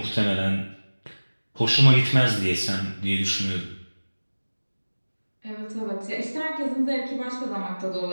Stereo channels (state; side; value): inverted; both; correlation -1.00